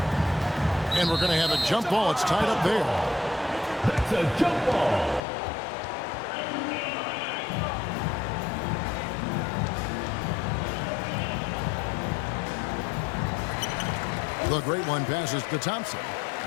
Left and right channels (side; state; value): right; drops out; at 5.2 s